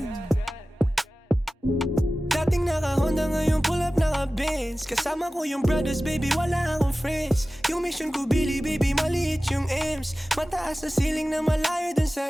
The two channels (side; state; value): both; normal; correlation 0.96